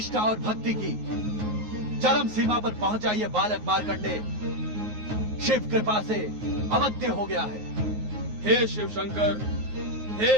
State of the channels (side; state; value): left; late; 9.5 ms